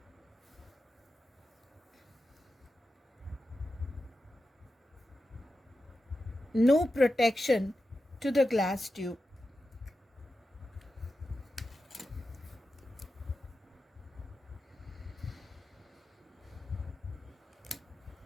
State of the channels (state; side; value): normal; both; correlation 0.91